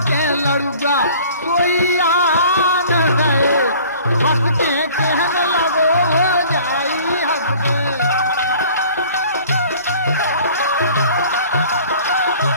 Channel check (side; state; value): both; inverted; correlation -0.49